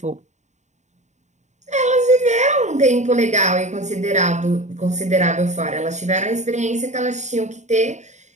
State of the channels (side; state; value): left; late; 0.34 ms